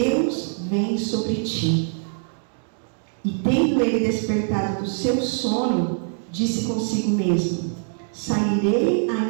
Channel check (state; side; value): silent; left; digital silence